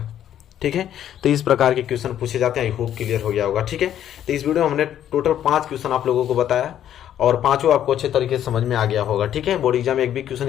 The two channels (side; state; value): right; quieter; 10.7 dB